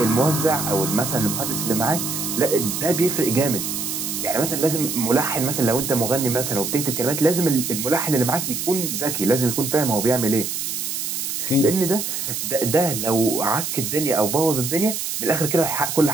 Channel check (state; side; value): noise; right; hiss, 3 dB below the sound